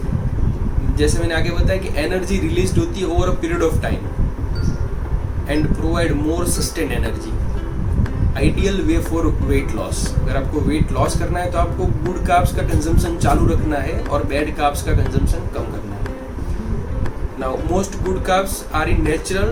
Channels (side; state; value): both; identical; correlation 1.00